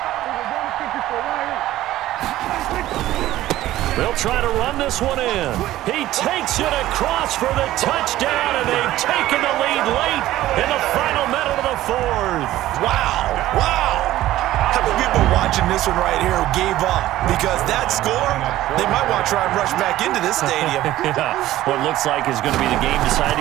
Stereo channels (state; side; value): quieter; left; 14.9 dB